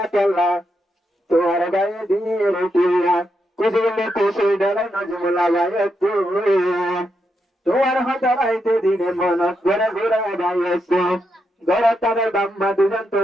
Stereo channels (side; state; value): both; normal; correlation 0.83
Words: কেল্লা তোমার গায়ে দিয়ে রুটিয়া কুসুরলে কুসুর ডালা নজমুলা গায়ে তোমার হাতে রাইতে দিনে মন ঘরে ঘুরে গাইছে ঘরে তাদের বাম্মা দুজন